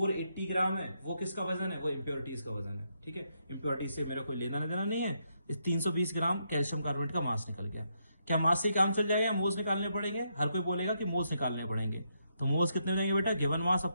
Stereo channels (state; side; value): inverted; both; correlation -0.79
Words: ग्राम है वो किसका वजन है? वो इम्प्योरिटीज का वजन है। ठीक है, इम्प्योरिटीज से मेरा कोई लेना देना नहीं है। इस 320 ग्राम कैल्शियम कार्बोनेट का मास निकल गया। क्या मास से काम चल जाएगा? मोल्स निकालने पड़ेंगे। हर कोई बोलेगा कि मोल्स निकालने पड़ेंगे। तो मोल्स कितने हो जाएंगे बेटा? Given mass